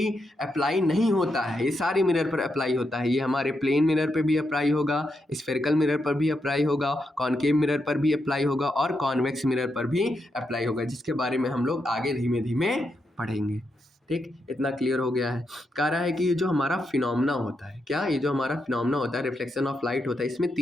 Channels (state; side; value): normal; both; correlation 0.83